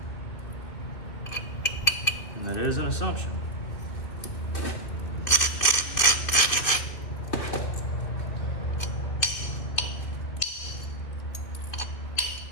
And that is an assumption.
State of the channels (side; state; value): right; late; 2.6 ms